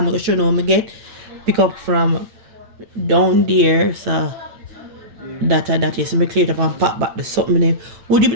gonna show you I get pick up from down there. So that is me clear it up and pack back the something there. Would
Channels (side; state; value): left; late; 8.8 ms